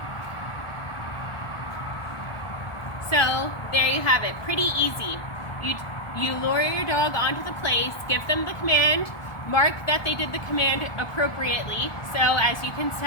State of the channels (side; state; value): right; late; 1.2 ms